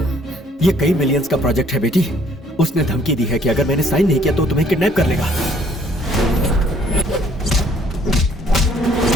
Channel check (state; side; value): normal; both; correlation 0.62